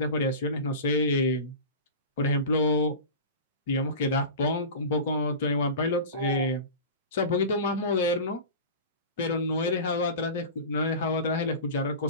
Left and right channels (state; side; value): inverted; both; correlation -0.31